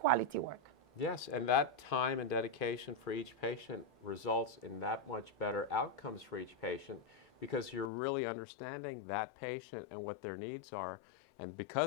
work. Yes, and that time and dedication for each patient results in that much better outcomes for each patient, because you're really understanding that patient and what their needs are. And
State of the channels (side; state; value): right; drops out; at 7.9 s